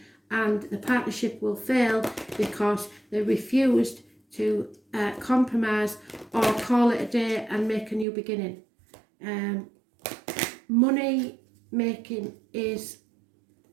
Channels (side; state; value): left; drops out; at 8.1 s